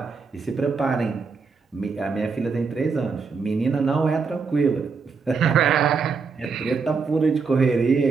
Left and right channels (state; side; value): quieter; left; 5.1 dB